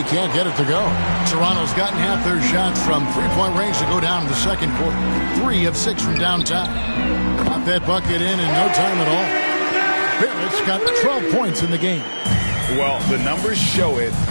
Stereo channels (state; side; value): inverted; both; correlation -1.00